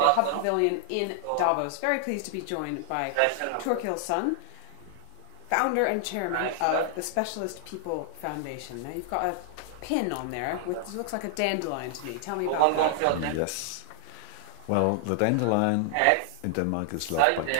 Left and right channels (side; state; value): both; different; correlation -0.01